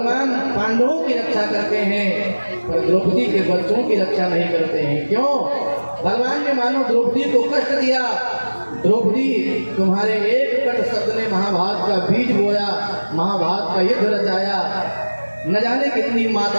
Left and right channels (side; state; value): both; inverted; correlation -1.00